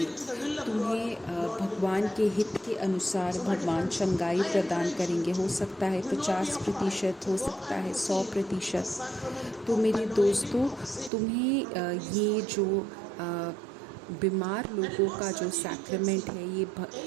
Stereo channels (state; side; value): drops out; left; at 11.1 s